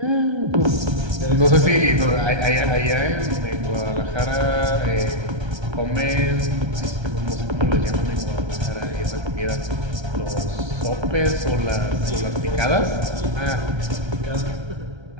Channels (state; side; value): late; left; 1.3 ms